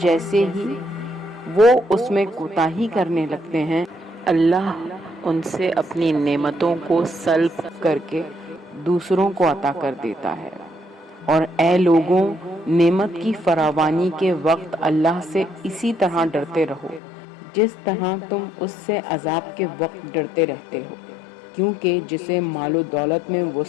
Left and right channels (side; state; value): right; drops out; at 17.0 s